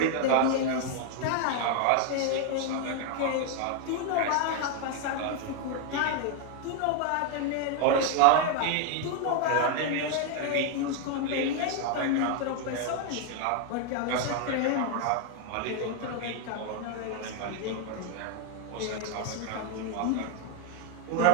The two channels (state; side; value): different; both; correlation 0.00